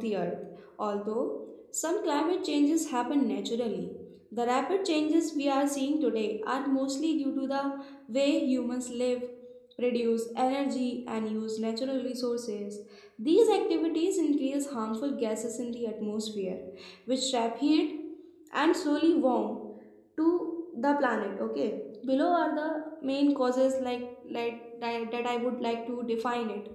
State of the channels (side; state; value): both; identical; correlation 1.00